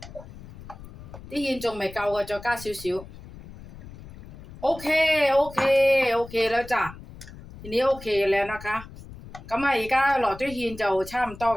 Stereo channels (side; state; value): left; noise; rumble, 16 dB below the sound